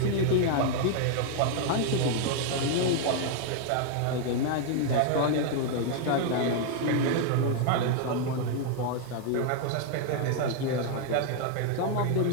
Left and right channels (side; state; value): both; different; correlation 0.00